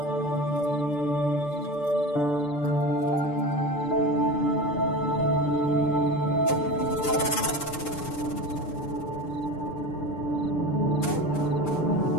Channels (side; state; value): right; late; 6.7 ms